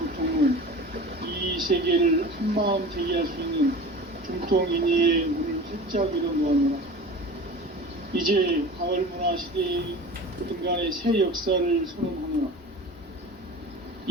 이 세계를 한마음 대기할 수 있는 중통인의의 문을 활짝 열어놓았노라. 이제 가을문화 시대의 인간의 새 역사를 선언하노라.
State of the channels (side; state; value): both; normal; correlation 0.36